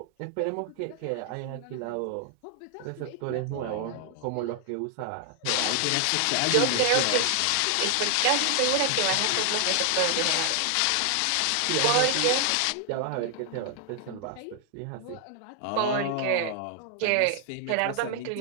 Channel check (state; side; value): different; both; correlation 0.00